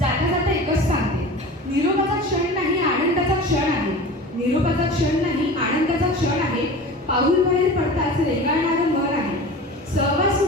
जाता एकच सांगते, निरोपाचा क्षण नाही आनंदाचा क्षण आहे. निरोपाचा क्षण नाही आनंदाचा क्षण आहे. पाऊल बाहेर पडताच रेंगाळणारं मन आहे. सहवास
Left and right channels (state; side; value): normal; both; correlation 0.35